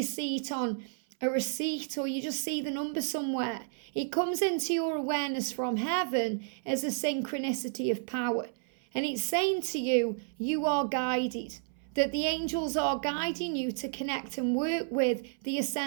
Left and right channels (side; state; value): left; silent; 57 dB below the other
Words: see it on a receipt, or you just see the number somewhere, it comes into your awareness from heaven as a synchronicity of power. And it's saying to you, you are guided, that the angels are guiding you to connect and work with the